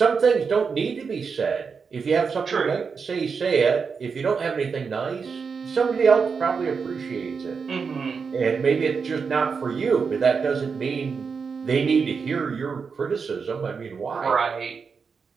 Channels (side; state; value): left; quieter; 5.5 dB